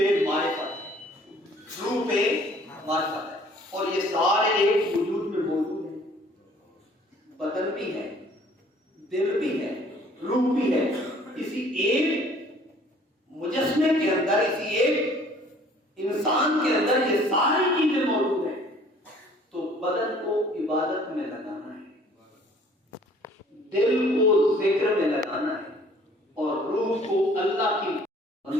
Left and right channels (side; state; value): both; normal; correlation 0.55